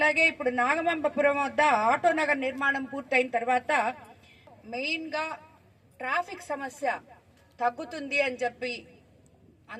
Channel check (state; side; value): identical; both; correlation 1.00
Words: ఇప్పుడు నాగమంబపురం వద్ద ఆటో నగర్ నిర్మాణం పూర్తయిన తర్వాత మెయిన్ గా ట్రాఫిక్ సమస్య తగ్గుతుంది అని చెప్పి